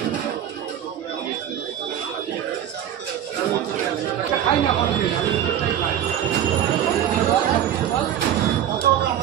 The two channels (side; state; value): left; quieter; 10.4 dB